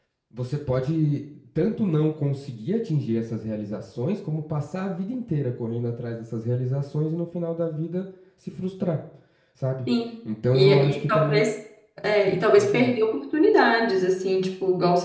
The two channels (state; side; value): identical; both; correlation 1.00